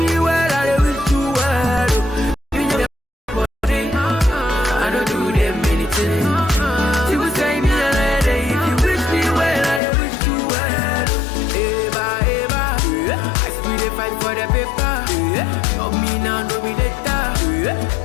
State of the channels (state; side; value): drops out; right; at 9.8 s